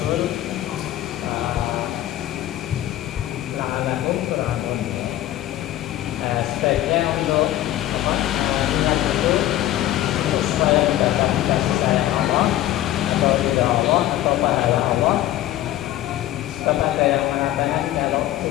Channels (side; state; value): right; quieter; 13.9 dB